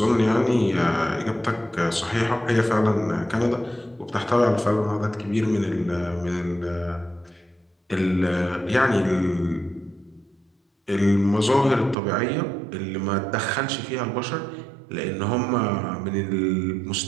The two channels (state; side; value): drops out; left; at 12.0 s